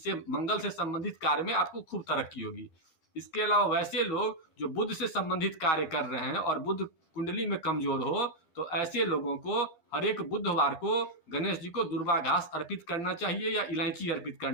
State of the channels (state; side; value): late; right; 12 ms